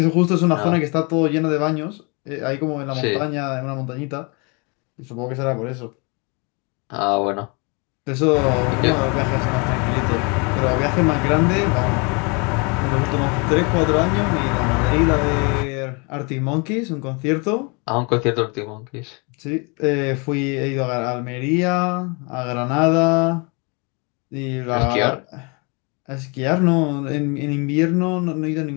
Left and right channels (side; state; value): right; quieter; 31.3 dB